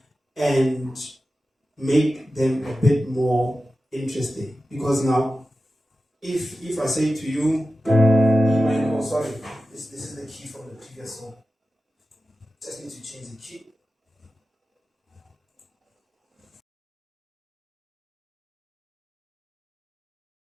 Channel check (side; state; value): both; normal; correlation 0.94